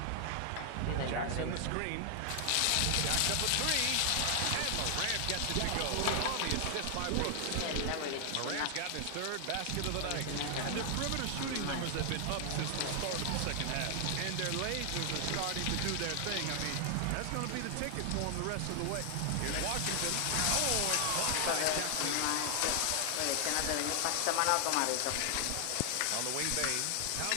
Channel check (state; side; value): different; both; correlation 0.00